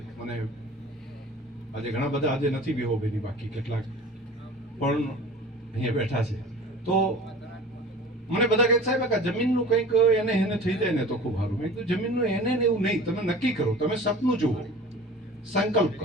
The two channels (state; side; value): normal; both; correlation 0.41